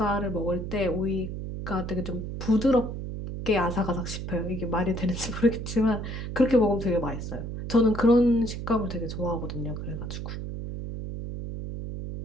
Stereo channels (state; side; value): noise; right; hum, 6 dB below the sound